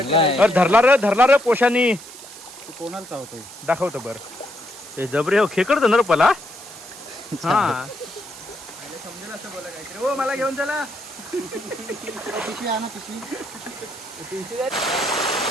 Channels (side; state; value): right; noise; hiss, 16 dB below the sound